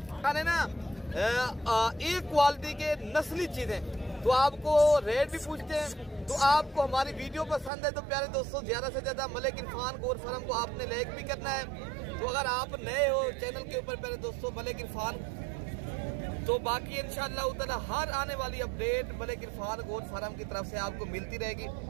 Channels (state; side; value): drops out; left; at 7.7 s